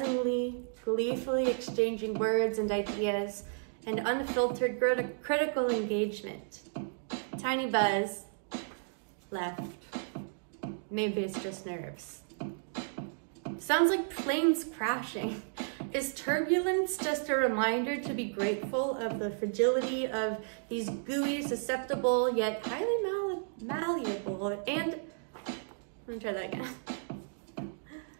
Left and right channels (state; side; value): silent; left; digital silence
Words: gleefully exchanging words and ideas, and unfiltered critical engagement. Tiny buzz, left. Maybe it's just nerves. Sounds like planes crashing. Is turbulence just a reminder to be grateful of the fragility of these gooey, susceptible, yet highly malleable, and, let me try that again.